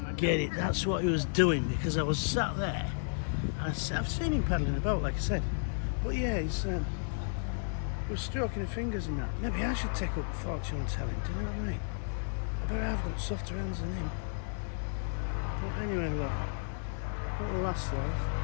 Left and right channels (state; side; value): silent; right; digital silence